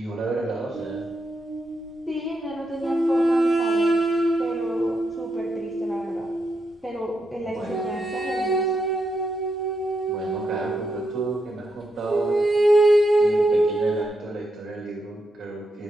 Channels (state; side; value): normal; both; correlation 0.82